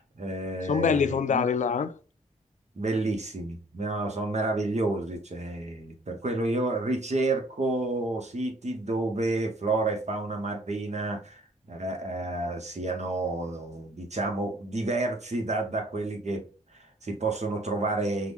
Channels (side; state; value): both; normal; correlation 0.55